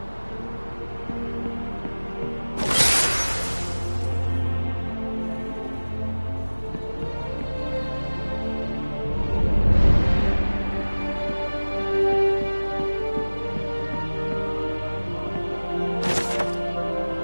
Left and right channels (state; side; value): inverted; both; correlation -1.00